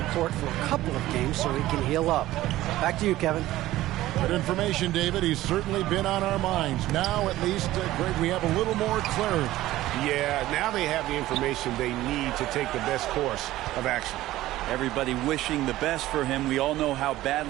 court for a couple of games so he can heal up. Back to you, Kevin. Good information, David. He's certainly been on our minds. Now, at least, Greg, we have a little more clarity. Yeah, now they have the information they need to take the best course of action. Everybody wishing the best for him. We all know how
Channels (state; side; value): quieter; left; 15.8 dB